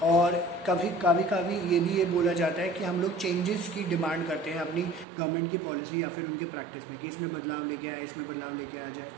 और कभी ये भी बोला जाता है कि हम लोग चेंजेस की डिमांड करते हैं अपनी गवर्नमेंट की पॉलिसी या फिर उनके प्रैक्टिस में, कि इसमें बदलाव लेके आए, इसमें बदलाव लेके आ जाए।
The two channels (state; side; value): drops out; left; at 5.1 s